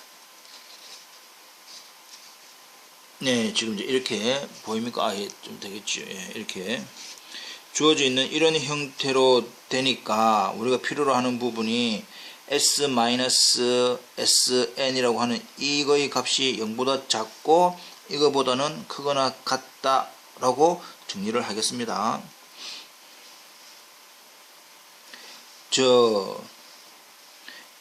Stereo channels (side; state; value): both; identical; correlation 1.00